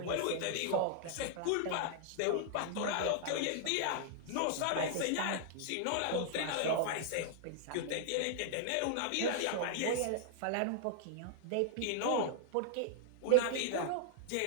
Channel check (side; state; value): both; different; correlation -0.01